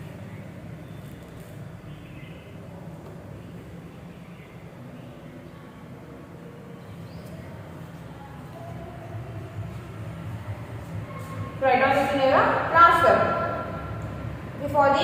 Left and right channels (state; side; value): identical; both; correlation 1.00